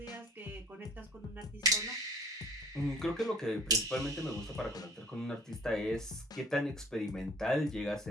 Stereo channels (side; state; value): both; normal; correlation 0.50